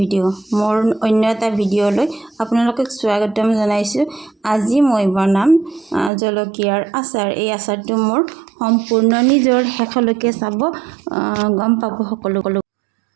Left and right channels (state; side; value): drops out; left; at 6.1 s